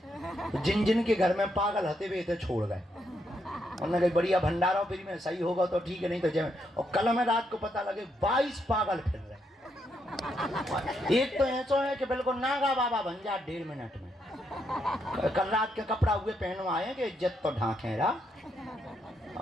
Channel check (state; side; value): normal; both; correlation 0.78